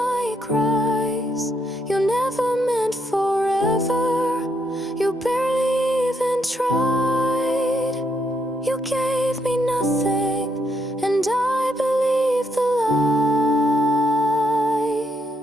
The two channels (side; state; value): both; normal; correlation 0.76